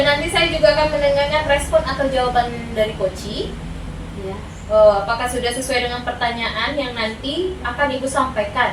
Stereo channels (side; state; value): both; identical; correlation 1.00